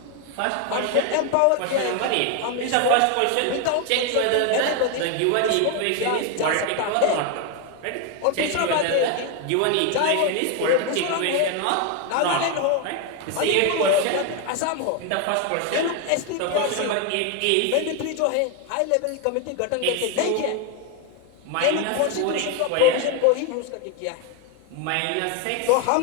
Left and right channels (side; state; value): both; different; correlation 0.01